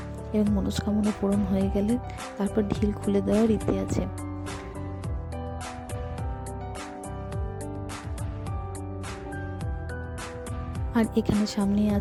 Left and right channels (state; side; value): identical; both; correlation 1.00